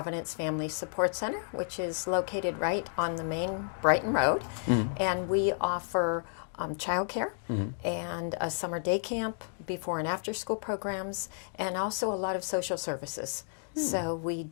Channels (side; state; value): right; silent; digital silence